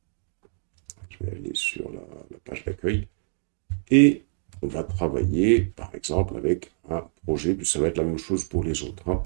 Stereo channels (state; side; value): silent; left; digital silence